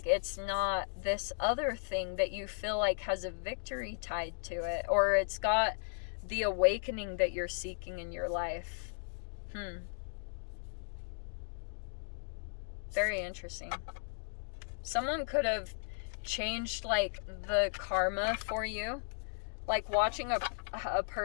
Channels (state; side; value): silent; right; digital silence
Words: it's not this other thing that you feel like has a victory tied to it, or it's got the awakening that you're seeking in your life. Very interesting. Someone could have changed like the karma for you. Like watching a